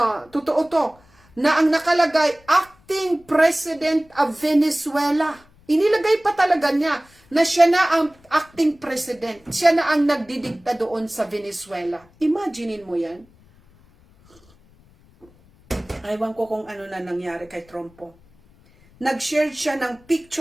totoo to, na ang nakalagay, acting president of Venezuela. Inilagay pa talaga niya na siya na ang acting president. Siya na ang nagdidikta doon sa Venezuela. Imaginein mo yan. Ewan ko kung ano na nangyari kay Trump po. Nag-share siya ng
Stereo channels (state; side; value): noise; left; rumble, 29 dB below the sound